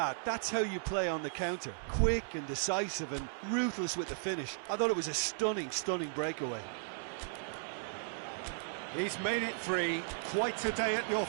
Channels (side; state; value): left; silent; 54 dB below the other